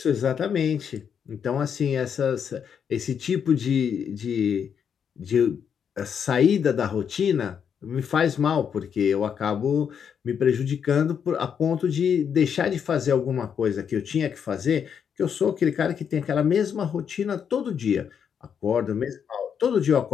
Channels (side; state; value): right; quieter; 7.6 dB